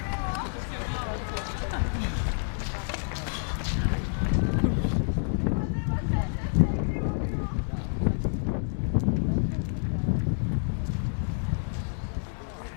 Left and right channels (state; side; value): silent; right; digital silence